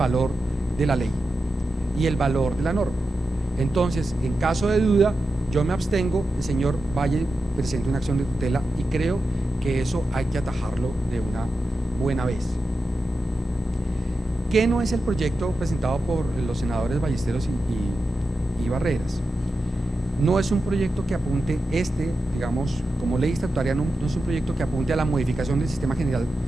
de la ley y el valor de la norma. Entonces, en caso de duda, yo me abstengo, el señor Valle presenta una acción de tutela y creo que eso hay que atajarlo de una buena vez. ¿Qué no es el proyecto presentado por los senadores Ballesteros y Barreras? No es un proyecto que apunte, digamos, como ley estatutaria, no es un proyecto que apunte a la modificación del sistema general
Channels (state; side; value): normal; both; correlation 0.90